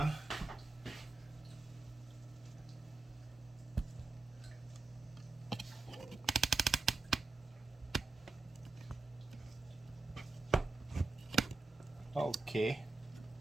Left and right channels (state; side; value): quieter; left; 3.4 dB